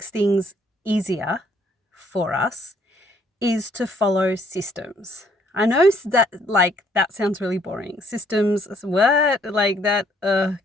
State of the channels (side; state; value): both; normal; correlation 0.65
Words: things easier for us is to follow systems. I know that that sounds really boring. Systems, what? Like that